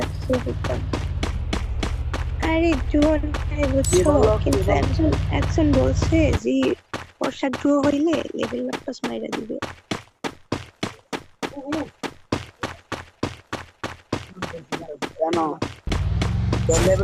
ট্যুর হইতাম। আরে জুন ভাই কি বুঝছো, বললো কি কিন্তু বল? একজন একজন বলছে যে ওর সাথে ট্যুর হইলে লেভেল আপ মাইরা দিবে। কেন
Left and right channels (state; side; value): identical; both; correlation 1.00